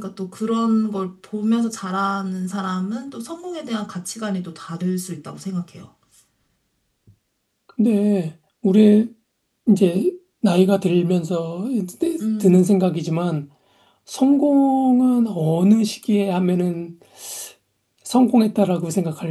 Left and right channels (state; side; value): identical; both; correlation 1.00